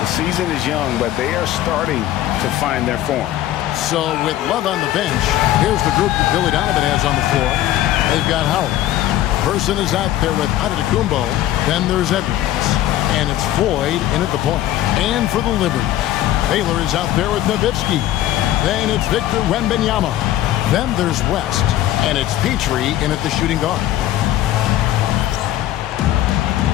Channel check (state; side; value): quieter; right; 13.4 dB